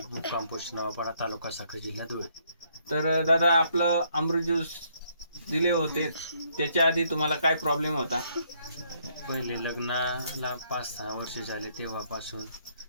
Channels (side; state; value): both; inverted; correlation -0.70